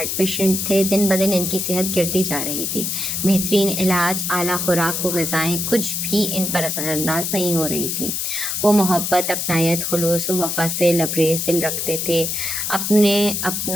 پیشنٹ تھے، دن بدن ان کی صحت گرتی جا رہی تھی۔ بہترین علاج، اعلیٰ خوراک و غذائیں کچھ بھی ان پر اثر انداز نہیں ہو رہی تھی۔ وہ محبت، اپنائیت، خلوص و وفا سے لبریز دل رکھتے تھے۔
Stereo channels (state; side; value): noise; left; hiss, 1 dB below the sound